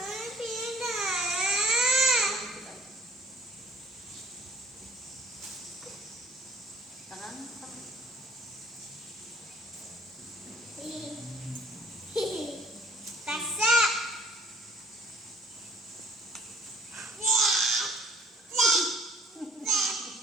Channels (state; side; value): normal; both; correlation 0.55